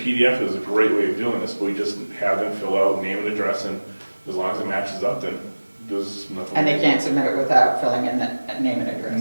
is a great way of doing this, but we just have them fill out name and address, and as long as it matches up, then there's nothing. And they can't submit it without filling in the name and address.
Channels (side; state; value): both; inverted; correlation -1.00